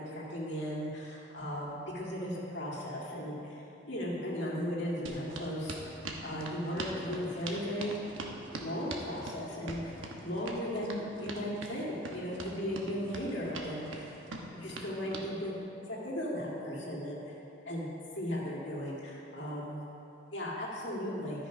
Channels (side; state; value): both; normal; correlation 0.45